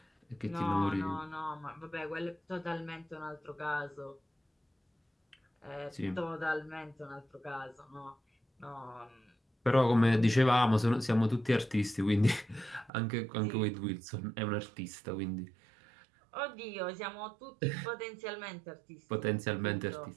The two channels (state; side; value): drops out; left; at 12.9 s